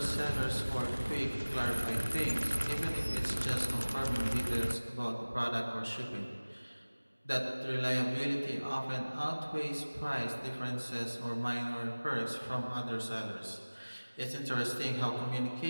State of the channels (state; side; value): inverted; both; correlation -1.00